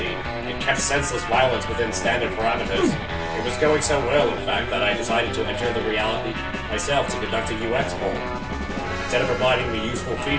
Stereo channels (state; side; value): identical; both; correlation 1.00